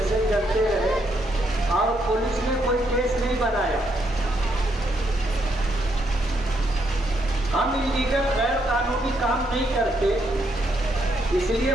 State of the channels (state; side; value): normal; both; correlation 0.76